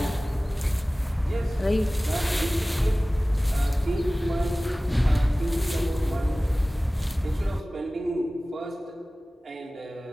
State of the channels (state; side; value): normal; both; correlation 0.98